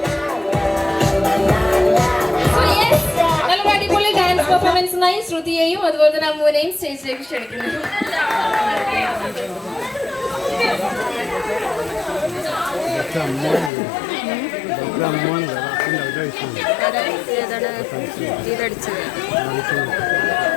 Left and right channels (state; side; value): drops out; right; at 13.7 s